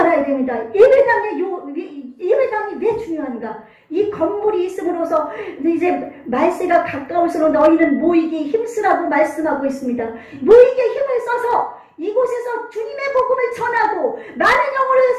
됩니다. 예배당이 왜 중요한가? 이 건물이 있음으로써 이제 말세가 가까울수록 너희는 모이기 힘쓰라고 말씀하고 있습니다. 모이기에 힘을 써서 이곳에서 주님의 복음을 전하고 많은 영혼을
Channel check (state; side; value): identical; both; correlation 1.00